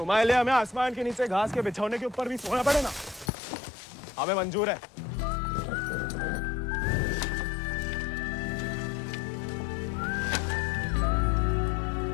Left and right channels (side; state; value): right; drops out; at 3.3 s